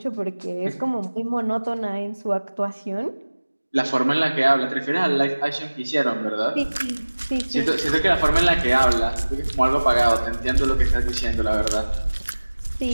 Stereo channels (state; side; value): inverted; both; correlation -1.00